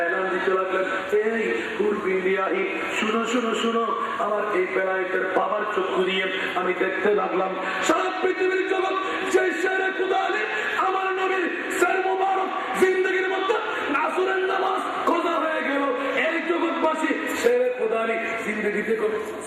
এলান দিতে লাগলেন, এই হুরবিন্দিয়াহি শুনো শুনো শুনো। আমার এই বেলায়েতের বাবার চক্ষু দিয়ে আমি দেখতে লাগলাম সারা পৃথিবীর জগৎ যে শেরে খুদা আলী আমার নবীর শের মুবারক জিন্দেগির মধ্যে আসরের নামাজ কজা হয়ে গেল। এই জগৎবাসী শেরে খুদা আলী জিন্দেগিতে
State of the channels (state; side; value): identical; both; correlation 1.00